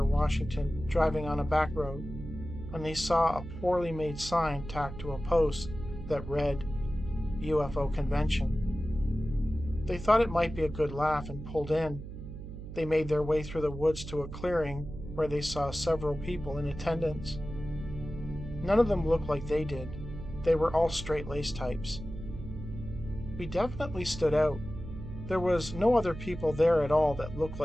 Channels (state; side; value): noise; right; hum, 10 dB below the sound